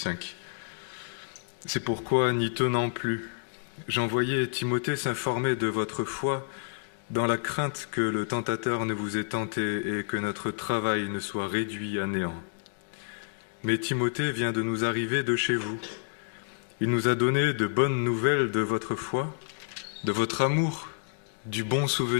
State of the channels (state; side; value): silent; right; digital silence